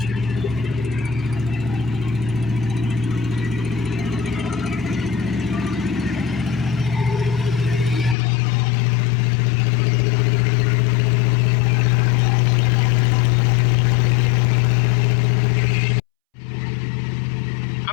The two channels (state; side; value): drops out; right; at 8.2 s